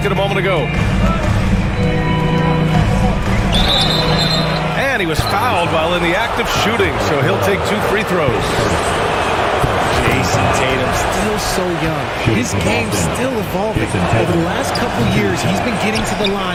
a moment ago. And he was fouled while in the act of shooting, so he'll take 2 free throws. Jason Tatum, still so young. His game's still evolving. Over the last couple years, he's been getting to the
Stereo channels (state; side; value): identical; both; correlation 1.00